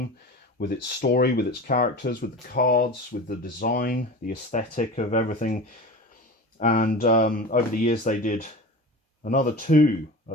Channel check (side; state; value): both; normal; correlation 0.32